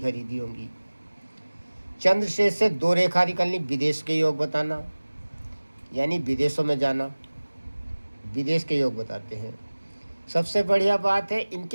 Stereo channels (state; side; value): inverted; both; correlation -1.00